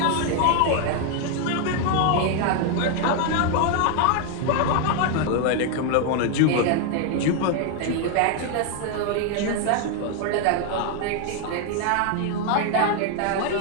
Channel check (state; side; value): different; both; correlation 0.00